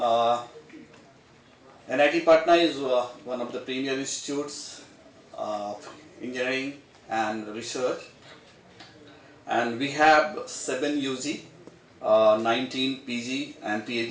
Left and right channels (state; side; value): identical; both; correlation 1.00